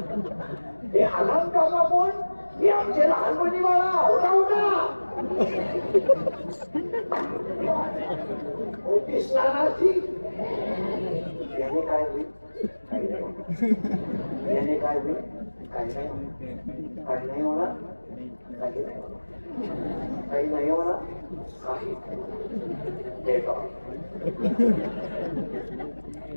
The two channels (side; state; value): both; inverted; correlation -1.00